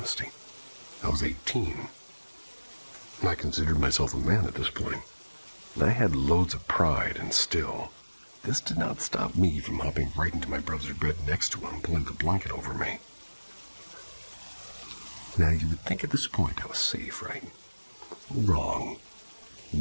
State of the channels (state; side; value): inverted; both; correlation -1.00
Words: I was 18. And I considered myself a man at this point. And I had loads of pride, and still, this did not stop me from hopping right into my brother's bed next to him, pulling the blanket over me. Now, you would think at this point I was safe, right? Wrong.